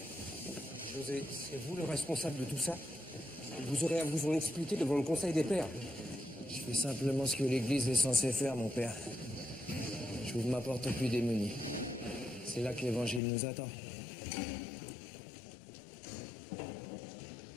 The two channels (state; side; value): drops out; right; at 13.2 s